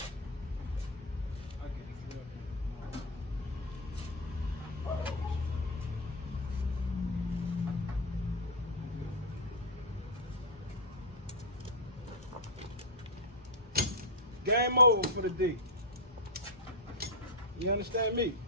Game over for the day. You understand me?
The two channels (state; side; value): normal; both; correlation 0.02